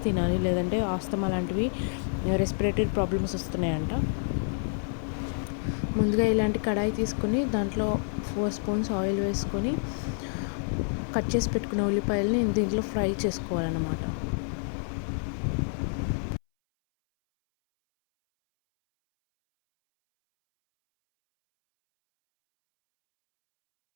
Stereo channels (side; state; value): right; silent; 59 dB below the other